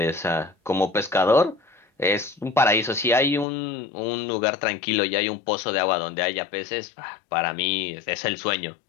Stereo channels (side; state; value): right; drops out; at 3.5 s